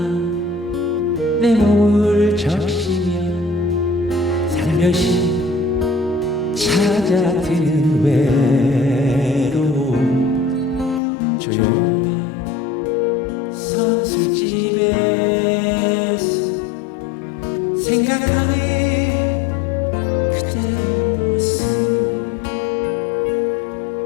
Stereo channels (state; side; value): drops out; right; at 11.0 s